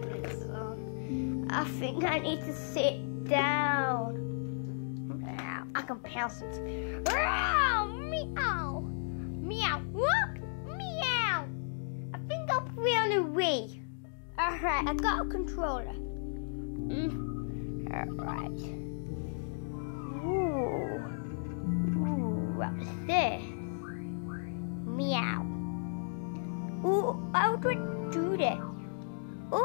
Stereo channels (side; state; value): right; silent; digital silence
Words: I think I need to sit down. I can pounce it. Meow! Meow! What? Meow! I think I'll put it on the Wii. Alright, I got a controller. Alright. Ooh, what's this? Meow. Ooh, how do I do this?